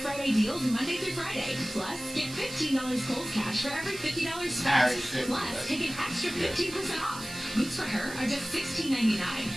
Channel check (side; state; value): right; noise; hiss, 13 dB below the sound